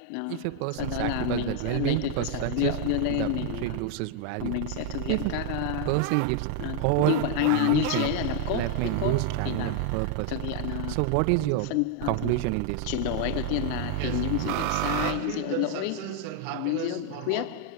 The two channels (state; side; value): different; both; correlation 0.01